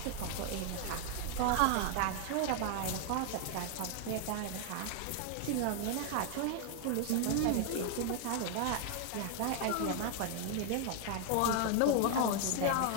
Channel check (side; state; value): both; different; correlation 0.00